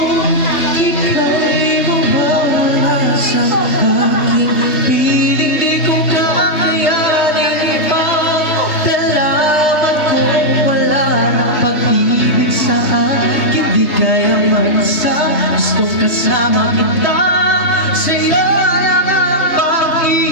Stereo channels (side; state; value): right; late; 3.3 ms